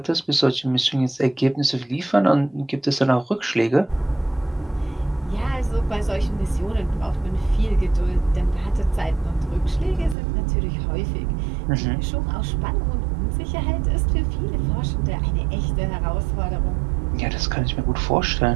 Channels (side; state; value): left; drops out; at 10.2 s